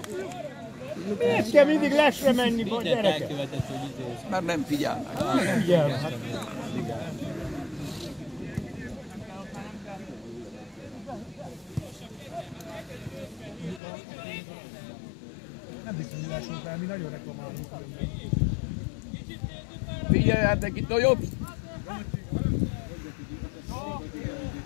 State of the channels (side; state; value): right; drops out; at 13.8 s